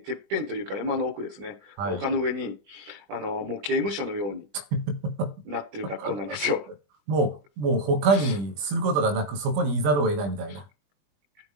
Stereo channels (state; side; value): late; left; 20 ms